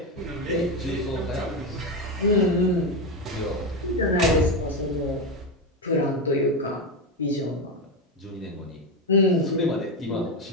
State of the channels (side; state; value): both; normal; correlation 0.12